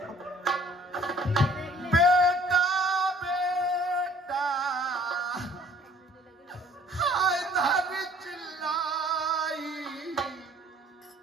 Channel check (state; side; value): normal; both; correlation 0.55